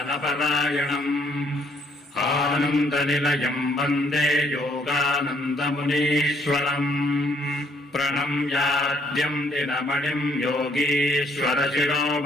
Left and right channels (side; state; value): both; normal; correlation 0.67